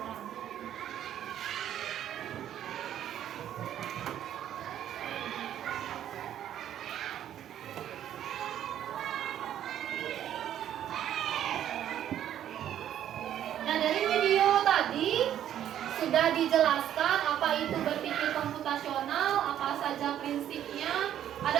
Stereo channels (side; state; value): left; quieter; 10.9 dB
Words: Nah, dari video tadi sudah dijelaskan apa itu berpikir komputasional, apa saja prinsipnya.